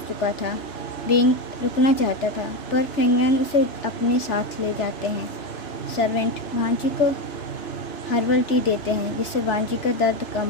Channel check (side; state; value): right; late; 3.4 ms